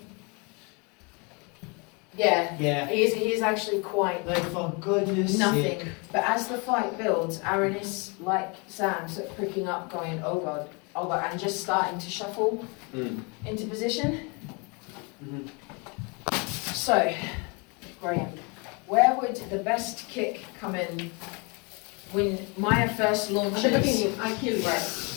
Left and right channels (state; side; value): quieter; right; 31.3 dB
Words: Yeah. yeah. He is actually quite Like for goodness nothing. sake. But as the fight builds, Aaron is like Sam, sort of pricking up, going, oh god, and just starting to shuffle into position. Mhm. So, Graham, where would the best kick come in when Maya first At the launches? beginning, I kill you. Right.